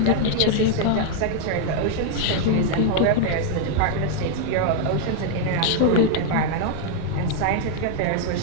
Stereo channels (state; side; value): different; both; correlation 0.00